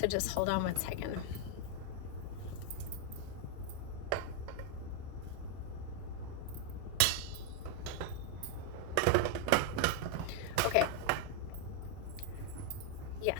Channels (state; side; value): different; both; correlation 0.00